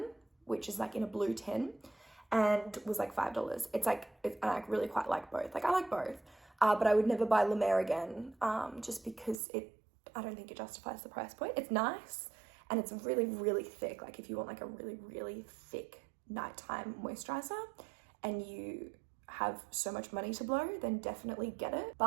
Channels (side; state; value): left; drops out; at 9.4 s